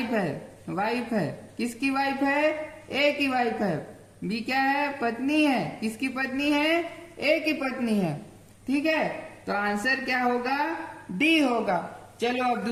है। वाइफ है, किसकी वाइफ है, A की वाइफ है। B क्या है, पत्नी है। किसकी पत्नी है, A की पत्नी है। ठीक है, तो आंसर क्या होगा, D होगा। चलो अब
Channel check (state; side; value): identical; both; correlation 1.00